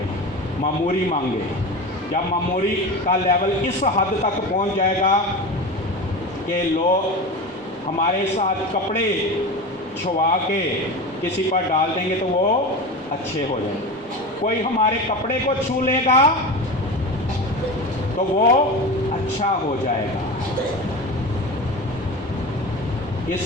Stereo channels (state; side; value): normal; both; correlation 0.27